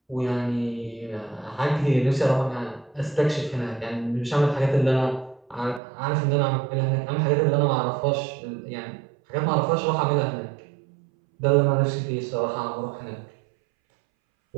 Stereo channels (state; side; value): drops out; left; at 5.8 s